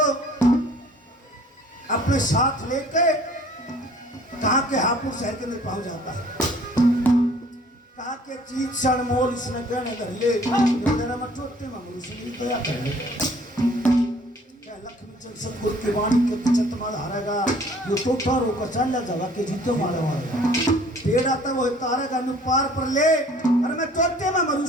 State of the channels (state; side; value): normal; both; correlation 0.54